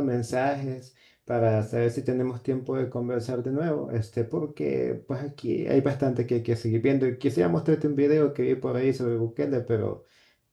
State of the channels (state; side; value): identical; both; correlation 1.00